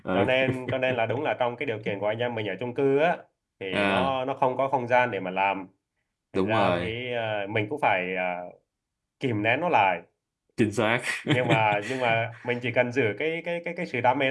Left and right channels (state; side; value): identical; both; correlation 1.00